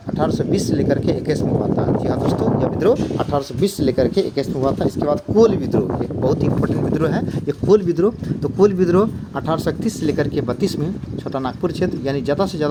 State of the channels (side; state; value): both; identical; correlation 1.00